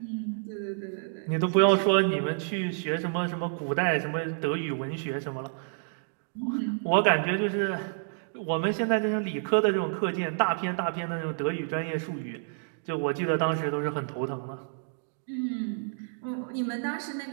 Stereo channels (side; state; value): left; silent; digital silence